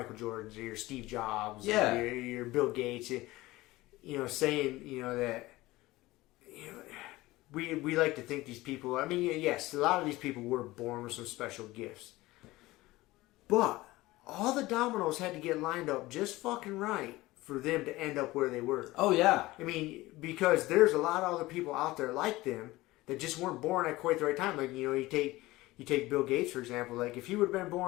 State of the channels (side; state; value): right; quieter; 18.9 dB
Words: Jordans or your Steve Jobs, or your Bill Gates. You know, saying, you know, that, you know, we like to think these people, I mean, yes, a lot of these people were born with some special gifts. But all the dominoes had to get lined up just fucking right for them to end up where they were. Oh, yeah. I mean, because there's a lot of other people out there like them that just weren't born at quite the right time. Like, you know, you take Bill Gates, for example. Like, if he would have been